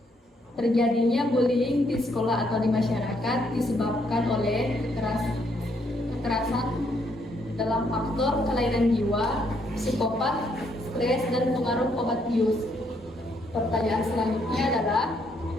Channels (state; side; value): normal; both; correlation 0.72